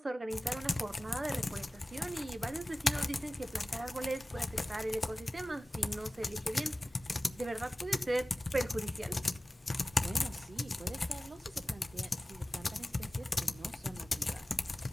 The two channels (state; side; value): normal; both; correlation 0.97